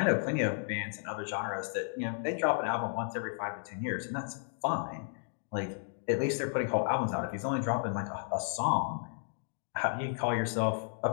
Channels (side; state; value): right; silent; digital silence